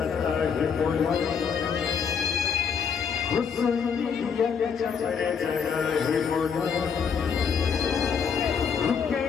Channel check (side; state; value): right; quieter; 6.7 dB